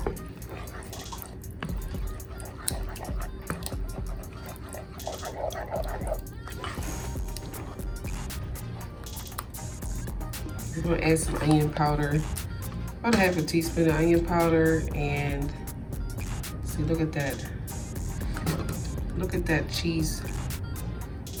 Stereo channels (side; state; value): both; identical; correlation 1.00